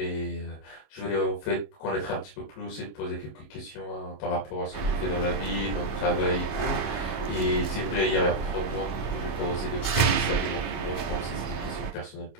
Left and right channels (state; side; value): late; right; 27 ms